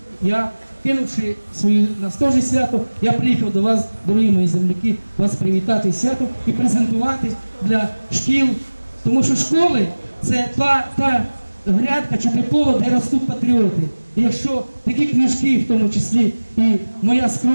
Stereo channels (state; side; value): inverted; both; correlation -1.00